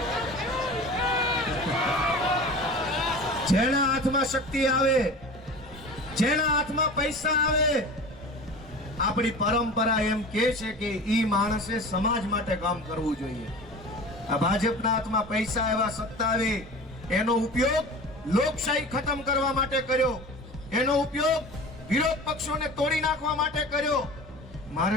જેના હાથમાં શક્તિ આવે, જેના હાથમાં પૈસા આવે, આપણી પરંપરા એમ કે છે કે ઈ માણસે સમાજ માટે કામ કરવું જોઈએ. આ ભાજપના હાથમાં પૈસા એવા સત્તા આવે, એનો ઉપયોગ લોકશાહી ખતમ કરવા માટે કર્યો, એનો ઉપયોગ વિરોધ પક્ષોને તોડી નાખવા માટે કર્યો.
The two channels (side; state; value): both; normal; correlation 0.36